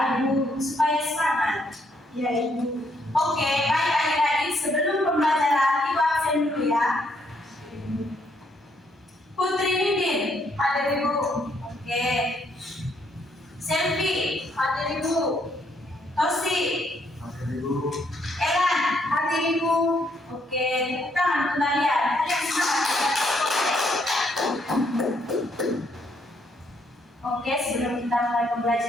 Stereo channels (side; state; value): both; normal; correlation 0.72